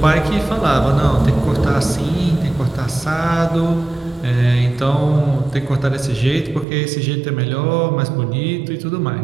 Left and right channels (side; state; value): left; drops out; at 6.7 s